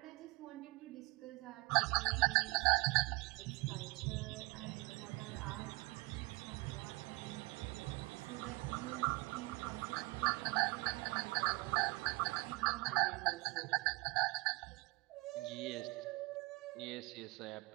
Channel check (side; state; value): left; quieter; 25.3 dB